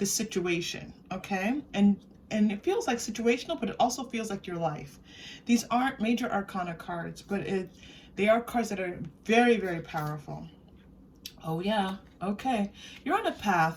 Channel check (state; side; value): identical; both; correlation 1.00